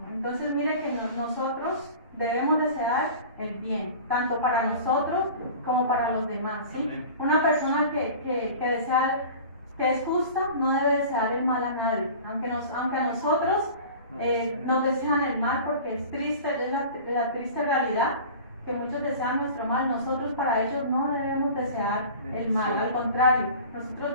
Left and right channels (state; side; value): inverted; both; correlation -0.39